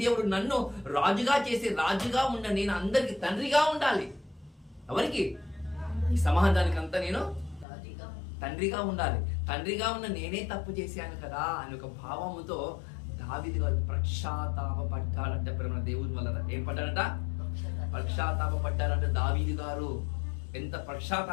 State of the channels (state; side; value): drops out; right; at 7.7 s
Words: దేవుడు నన్ను రాజుగా చేసి రాజుగా ఉండాలి. నేను అందరికి తండ్రిగా ఉండాలి. ఎవరికి? ఈ సమాజానికి అంతా నేను తండ్రిగా ఉండాలి. తండ్రిగా ఉన్న నేనే తప్పు చేశాను కదా అని ఒక భావముతో దావీదు గారు పశ్చాత్తాపడ్డాడంట. ప్రేమ దేవుని వల్ల ఏం పడ్డాడంట? పశ్చాత్తాపడ్డాడంట. దావీదు గారు ఎంత